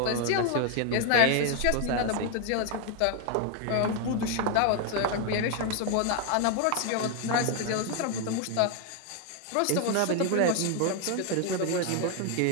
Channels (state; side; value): different; both; correlation 0.01